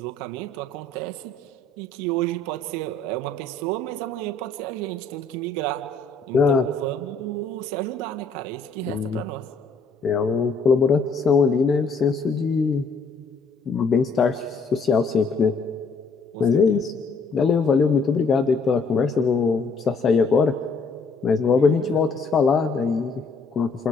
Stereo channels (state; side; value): quieter; right; 3.7 dB